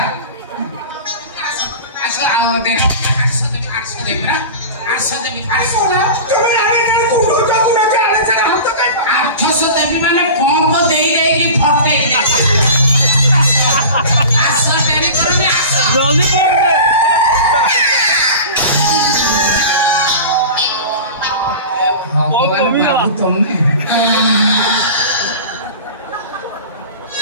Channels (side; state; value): both; inverted; correlation -0.34